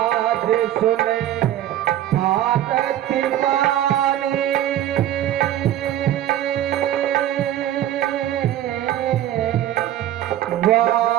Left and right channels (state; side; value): quieter; left; 12.3 dB